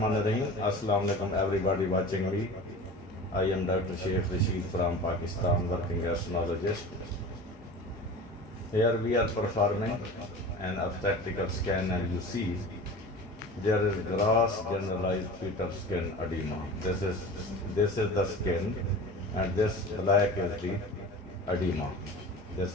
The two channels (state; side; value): normal; both; correlation 0.36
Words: Assalamu alaikum everybody watching me. I am Dr. Sheikh Rashid from Pakistan, working as neurologist. Here we are performing an obstetrical scan, and you see there is gross generalized fetal skin edema. This is the skin, and this black is the edema.